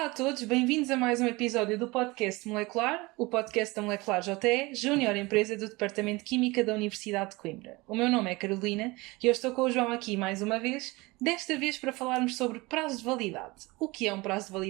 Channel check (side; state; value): left; quieter; 23.0 dB